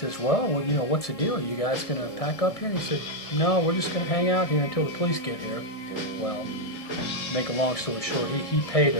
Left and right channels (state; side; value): late; right; 1.6 ms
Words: well, you know, what's the deal? Are you guys going to pack up here? And he said, no, we're just going to hang out here until the police get here. Well, make a long story short, he paid